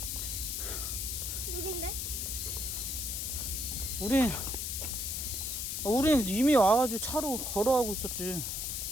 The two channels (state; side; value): noise; left; hiss, 2 dB below the sound